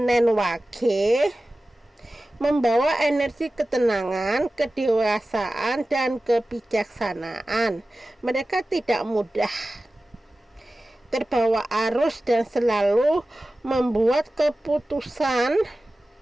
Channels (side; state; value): both; normal; correlation 0.95